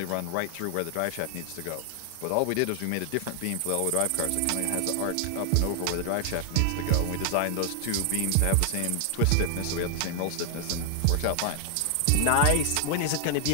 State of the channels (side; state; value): both; different; correlation 0.00